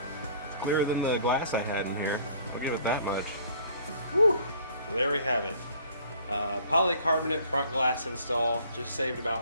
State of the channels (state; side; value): inverted; both; correlation -0.55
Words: It's clearer than the glass I had in here. I'll give it that much. Whew. So there we have it. Polycarbonate front glass install. Just saved